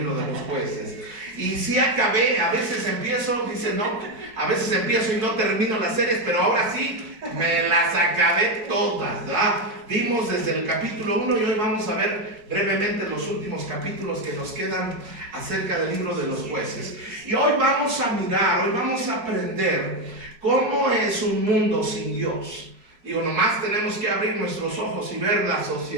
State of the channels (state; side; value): late; left; 4.6 ms